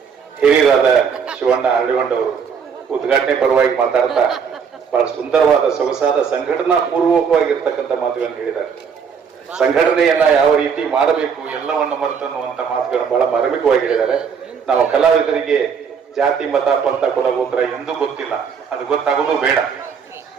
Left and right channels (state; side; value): quieter; left; 6.6 dB